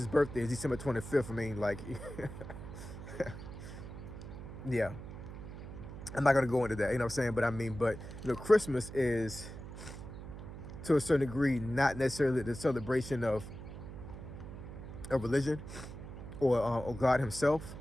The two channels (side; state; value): right; noise; hum, 11 dB below the sound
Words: birthday is December 25th, I mean, like, yeah, I'm not gonna go into that. You know what I'm saying? But I mean, but you know, Christmas is, to a certain degree, not necessarily the celebration of religion or God Himself.